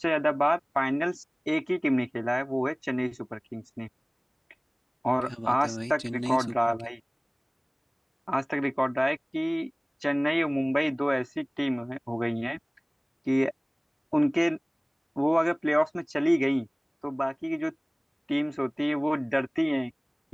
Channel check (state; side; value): identical; both; correlation 1.00